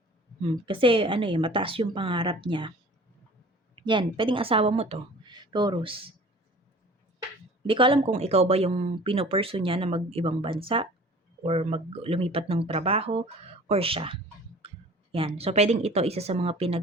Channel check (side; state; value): both; normal; correlation 0.46